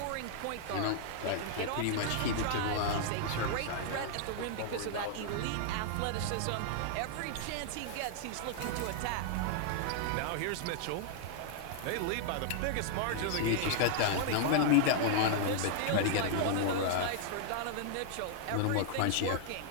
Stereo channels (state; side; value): different; both; correlation -0.01